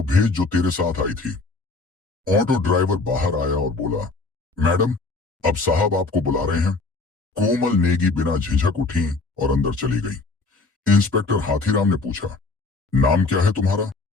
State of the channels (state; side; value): quieter; right; 3.6 dB